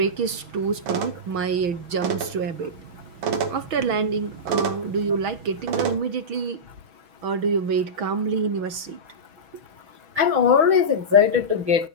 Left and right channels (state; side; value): late; left; 6.2 ms